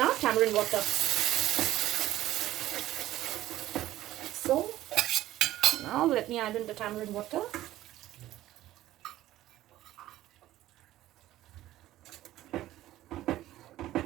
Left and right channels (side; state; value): left; quieter; 14.7 dB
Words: tamarind water. So now let me add in the tamarind water.